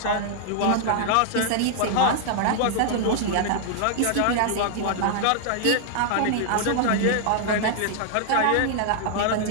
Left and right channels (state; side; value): different; both; correlation -0.01